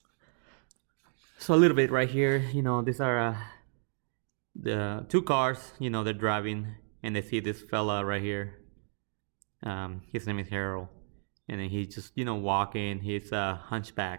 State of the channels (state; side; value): silent; left; 56 dB below the other